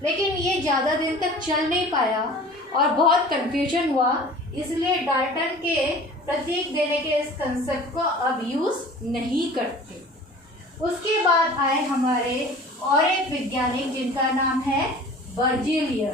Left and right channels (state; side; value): normal; both; correlation 0.43